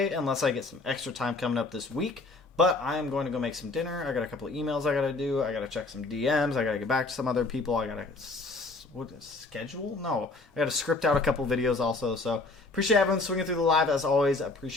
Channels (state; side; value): quieter; right; 3.5 dB